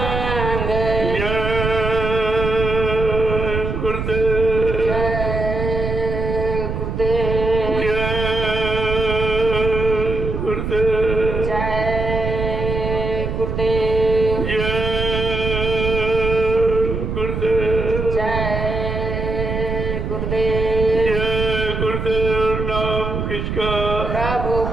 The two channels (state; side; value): noise; right; rumble, 3 dB below the sound